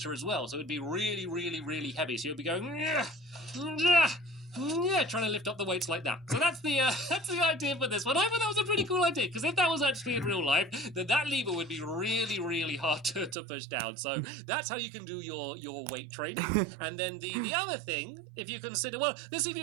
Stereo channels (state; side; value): drops out; left; at 13.4 s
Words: as well. So it would be really, really, really heavy. So you'll be going, yeah, trying to lift up the weights like that. So that's the idea for this one. I thought that was a pretty cool idea, because if that was actually in real life, then that lever would be really, really hard to push down. So that's how you can do your weight training. And then the other thing, if you consider, well, let's see if